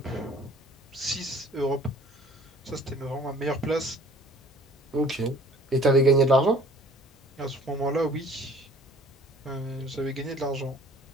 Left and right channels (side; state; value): both; normal; correlation 0.52